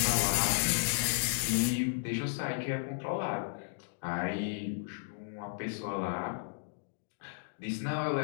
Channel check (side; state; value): right; silent; digital silence